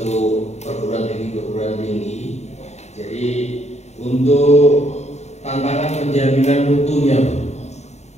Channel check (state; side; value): late; right; 0.32 ms